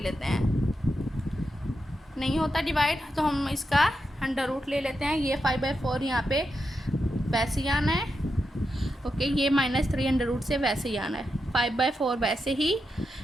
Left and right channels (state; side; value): normal; both; correlation 0.87